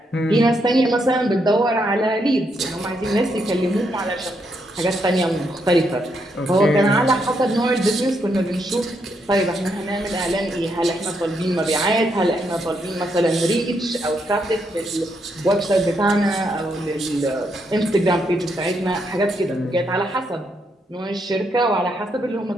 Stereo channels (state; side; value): normal; both; correlation 0.78